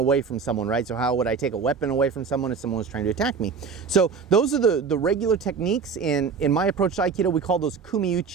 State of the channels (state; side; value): quieter; left; 5.6 dB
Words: from someone, right? So how would I take a weapon away from someone if someone was trying to attack me? So those are the regular techniques. In my approach to Aikido, we call those